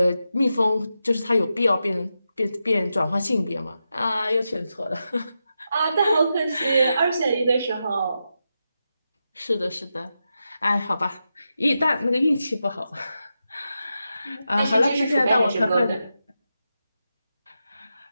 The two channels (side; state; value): both; inverted; correlation -0.88